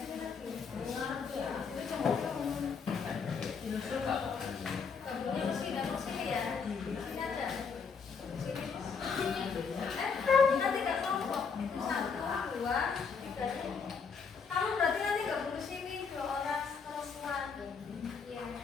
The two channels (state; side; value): quieter; right; 5.7 dB